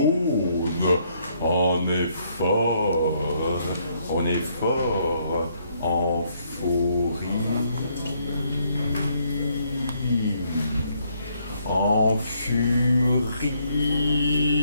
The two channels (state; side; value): inverted; both; correlation -0.71